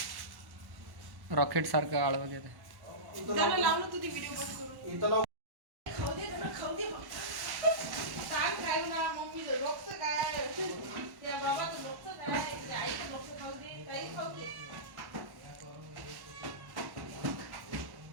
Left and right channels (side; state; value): left; late; 1.1 ms